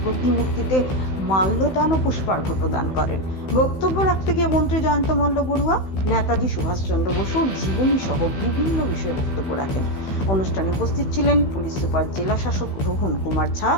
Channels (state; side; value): late; right; 16 ms